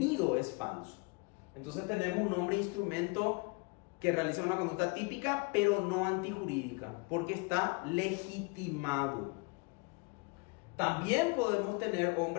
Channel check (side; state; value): right; quieter; 30.0 dB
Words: es falso. Entonces tenemos un hombre instrumento que realiza una conducta típica pero no antijurídica porque está legitimado. También podemos tener